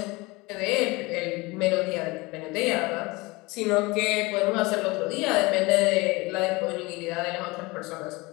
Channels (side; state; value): right; quieter; 23.5 dB